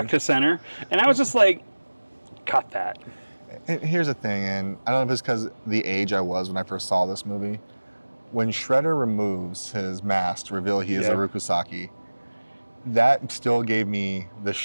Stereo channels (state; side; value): inverted; both; correlation -1.00